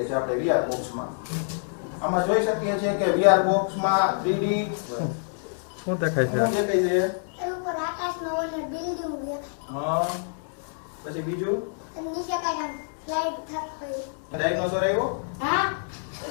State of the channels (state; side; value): silent; right; digital silence